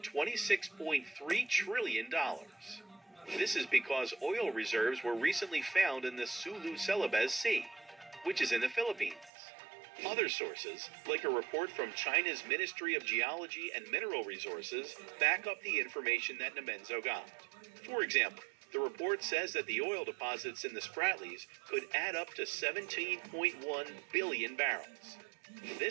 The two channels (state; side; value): drops out; left; at 9.3 s